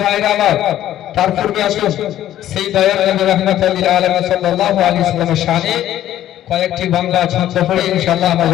ভাইরা আমার, তার পূর্বে আসুন সেই দয়াল নবী রাহমাতুল লিল আলামিন সাল্লাল্লাহু আলাইহি ওয়াসাল্লামের শানে কয়েকটি বাংলা ছন্দ পড়ে ইনশাআল্লাহ আমরা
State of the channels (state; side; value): quieter; right; 12.5 dB